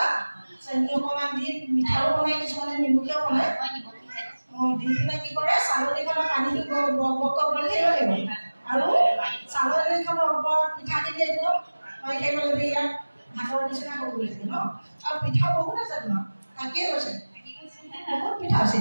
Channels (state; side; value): inverted; both; correlation -1.00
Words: চেনি অকমান দি মিঠাও বনাই কিছুমানে নিমখীয়া বনায় দি পেলাই কি কৰে চালনীখনৰ পানীটো বক বক কৰিবলৈ থাকিব লাগিব আৰু চালনীখনৰ ওপৰত পিঠাখিনি একদম মই থাকিব লাগিব ইয়াত ভাতৰ নিচিনা কৰিবলৈ থাকে ন আৰু পিঠা বহুত আছে তোমাৰ থাকিয়ে গৈছে বহুত পিঠা আছে